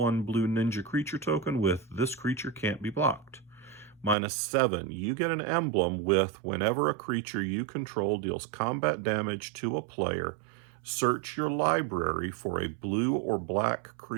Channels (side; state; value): left; drops out; at 4.2 s